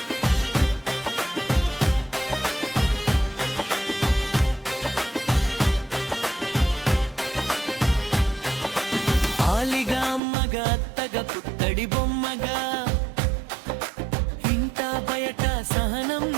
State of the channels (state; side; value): drops out; left; at 10.2 s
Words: ఆలిగా అమ్మగా అత్తగా పుత్తడి బొమ్మగా ఇంట బయట సహనం